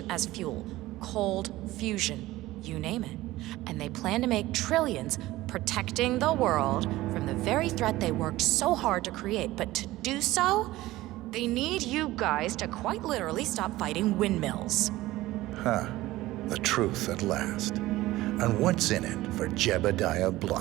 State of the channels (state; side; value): quieter; left; 17.3 dB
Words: as fuel, cold fusion, you name it. And they plan to make trillions protecting the world from the very threat they worked so hard to create. But to do so, they need you guys to quite literally stop fighting windmills. Huh. The truth at last. And what's in it for Jebediah